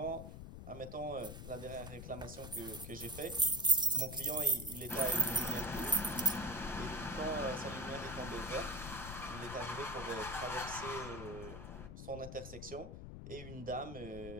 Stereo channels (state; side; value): noise; left; rumble, 10 dB below the sound